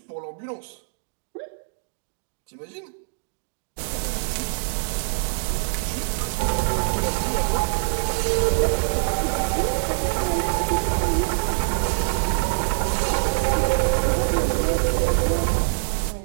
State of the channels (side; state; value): left; silent; digital silence